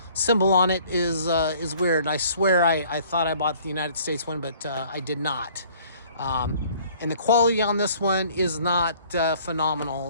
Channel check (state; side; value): inverted; both; correlation -0.56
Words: symbol on it is weird. I swear I thought I bought the United States one, but I did not. And the quality on this one is not